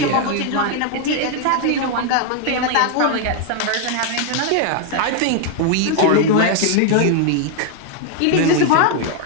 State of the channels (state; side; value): different; both; correlation 0.00